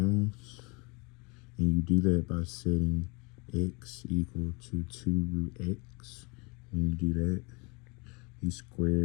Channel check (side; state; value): right; quieter; 28.9 dB